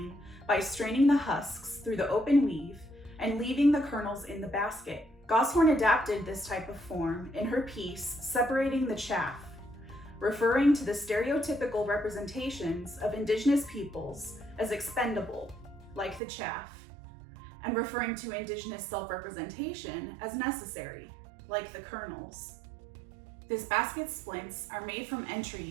by straining the husks through the open weave and leaving the kernels in the basket. Goshorn adapted this type of form in her piece Separating the Chaff, referring to the stereotypical representations of Indigenous peoples as expendable, like the chaff, and referring to Indigenous self-representation as necessary, like the kernels. This basket's splints are made from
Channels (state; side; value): drops out; left; at 16.2 s